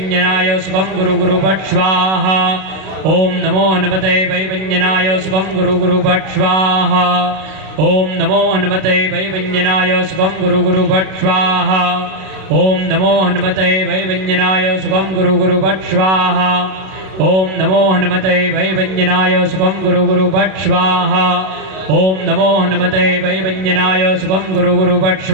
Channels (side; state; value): left; late; 32 ms